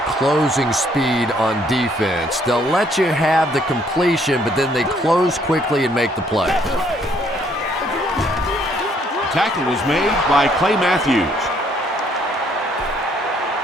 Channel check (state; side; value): normal; both; correlation 0.66